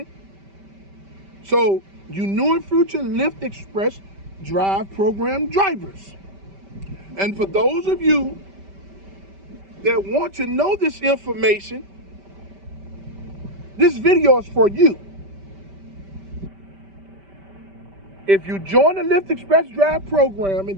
So, you new and future Lyft Express Drive program drivers. And for those of you that want to know this information, this video is for you. If you join the Lyft Express Drive program and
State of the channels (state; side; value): late; left; 5.1 ms